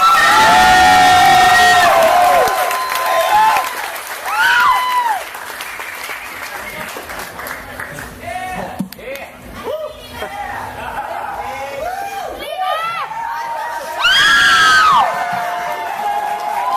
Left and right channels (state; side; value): identical; both; correlation 1.00